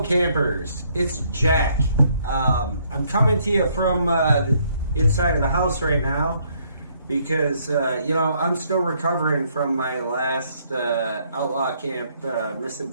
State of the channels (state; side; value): inverted; both; correlation -0.68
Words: it's Jack. I'm coming to you from the inside of the house right now because, I'm still recovering from my last Outlaw Camp